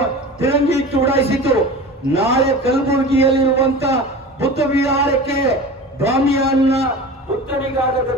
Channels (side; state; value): both; normal; correlation 0.34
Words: ತಿರಂಗಿ ಇಟ್ಟು ಉಡಾಯಿಸಿತು. ನಾಳೆ ಕಲಬುರಗಿಯಲ್ಲಿರುವಂತ ಬುದ್ಧ ವಿಹಾರಕ್ಕೆ ಬಾಮಿಯಾನ್ನ ಬುದ್ಧನಿಗಾದ